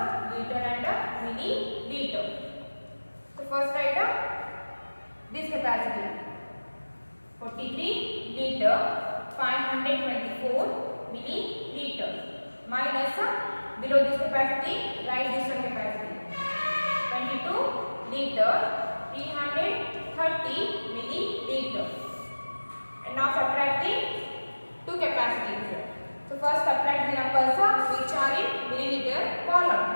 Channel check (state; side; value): inverted; both; correlation -1.00